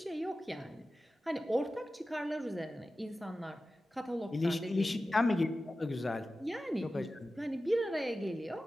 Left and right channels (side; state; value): both; normal; correlation 0.94